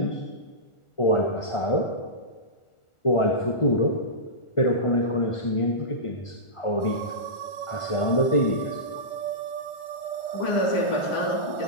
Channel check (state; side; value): late; right; 1.4 ms